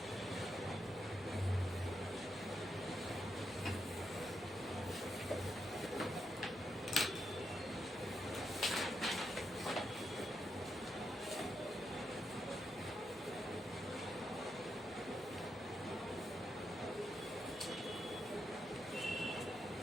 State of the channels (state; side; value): normal; both; correlation 0.83